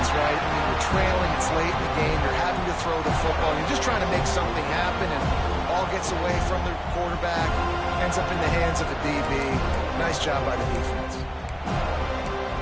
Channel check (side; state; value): both; identical; correlation 1.00